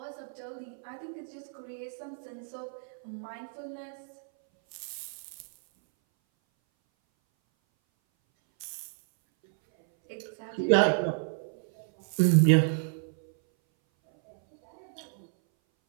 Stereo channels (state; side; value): silent; left; 57 dB below the other